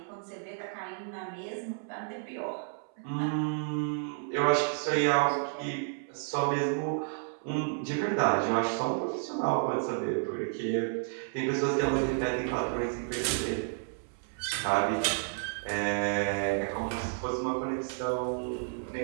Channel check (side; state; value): left; silent; 57 dB below the other